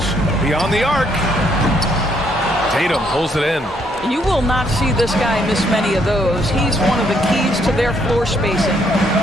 Beyond the arc. Tatum pulls it in. You will not see this guy miss many of those. He's one of the keys to their floor spacing.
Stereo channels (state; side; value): normal; both; correlation 0.71